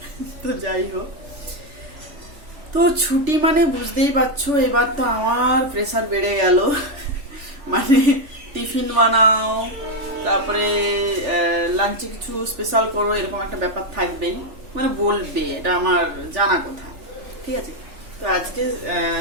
তো যাই হোক, তো ছুটি মানে বুঝতেই পারছো, এবার তো আমার প্রেসার বেড়ে গেল। মানে টিফিন বানাও, তারপরে লাঞ্চে কিছু স্পেশাল করো, এরকম একটা ব্যাপার থাকবেই। মানে বলবে, এটা আমার জানা কথা, ঠিক আছে। তো আজকে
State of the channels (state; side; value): late; left; 3.4 ms